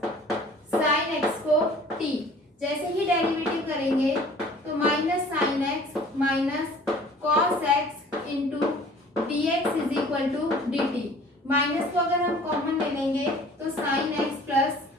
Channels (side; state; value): both; normal; correlation 0.49